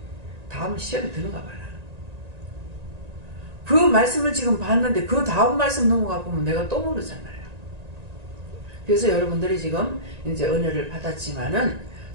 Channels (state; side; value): late; left; 1.9 ms